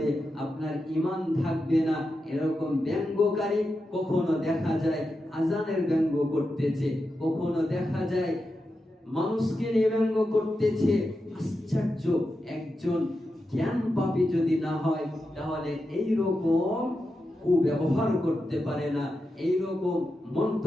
আপনার ঈমান থাকবে না। এরকম ব্যঙ্গকারী কখনো দেখা যায় আজানের ব্যঙ্গ করতেছে, কখনো দেখা যায় মানুষকে নিয়ে ব্যঙ্গ করতেছে। আশ্চর্য, একজন জ্ঞান পাপী যদি না হয় তাহলে এইরকম কুব্যবহার করতে পারে না, এইরকম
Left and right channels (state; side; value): normal; both; correlation 0.89